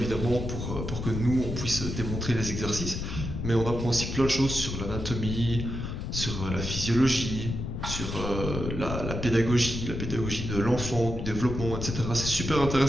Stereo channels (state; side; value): noise; left; rumble, 5 dB below the sound